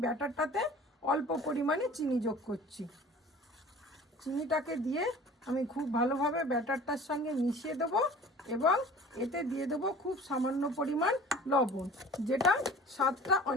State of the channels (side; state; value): both; normal; correlation 0.44